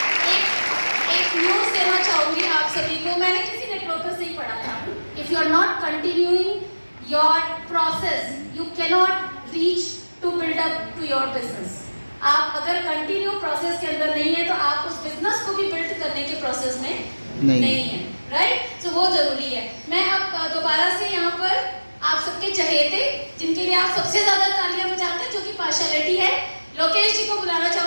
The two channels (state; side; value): inverted; both; correlation -1.00